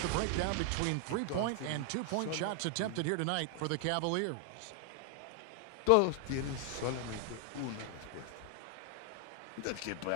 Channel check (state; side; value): different; both; correlation 0.00